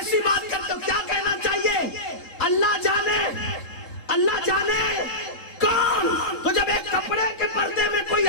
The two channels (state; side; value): late; right; 3.8 ms